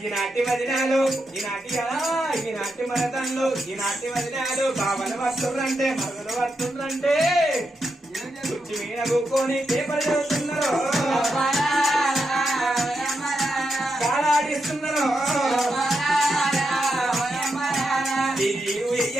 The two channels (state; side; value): normal; both; correlation 0.85